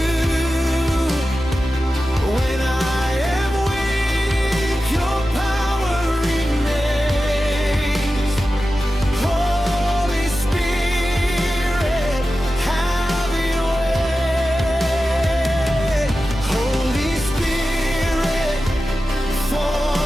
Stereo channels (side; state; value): both; normal; correlation 0.93